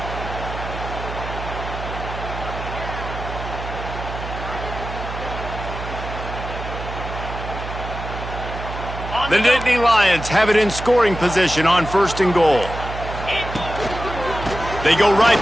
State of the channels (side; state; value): right; noise; hum, 8 dB below the sound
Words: The Nittany Lions have it in scoring position on first and goal. They go